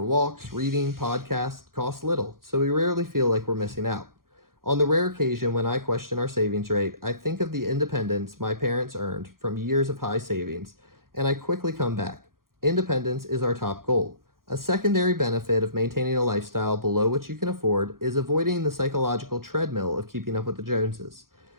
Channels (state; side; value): late; left; 0.92 ms